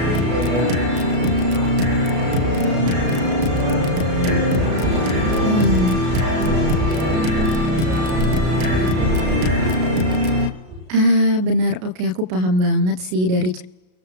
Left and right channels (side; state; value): left; late; 33 ms